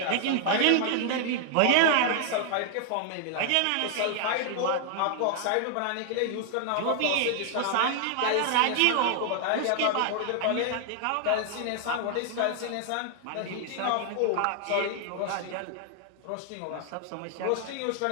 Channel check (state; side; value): different; both; correlation 0.00